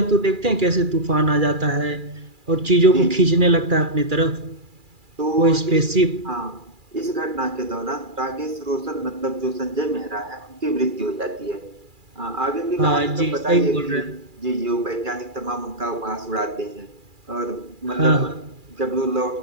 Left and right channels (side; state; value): left; late; 2.4 ms